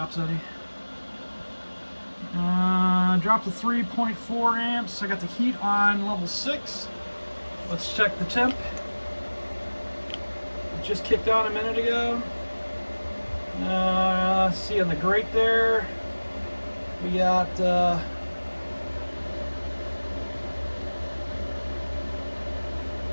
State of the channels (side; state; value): both; inverted; correlation -1.00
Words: any. Dropped to 3.4 amps. I got the heat on level 6. Let's check the temp. It just kicked on a minute ago. See on the grate there, we got